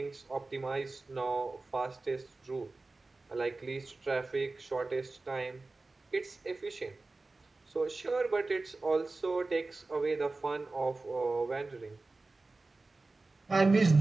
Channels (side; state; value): left; quieter; 3.4 dB